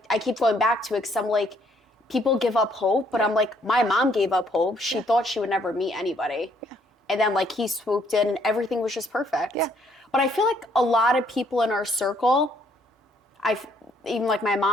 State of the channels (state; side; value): normal; both; correlation 0.67